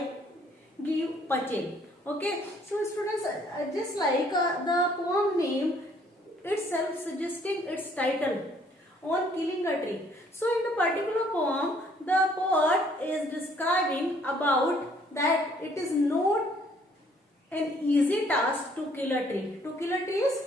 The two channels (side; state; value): both; normal; correlation 0.62